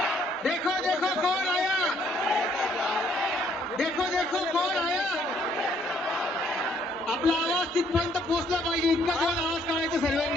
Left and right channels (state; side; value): normal; both; correlation 0.66